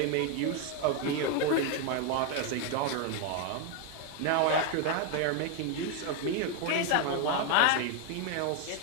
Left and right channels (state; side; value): different; both; correlation 0.01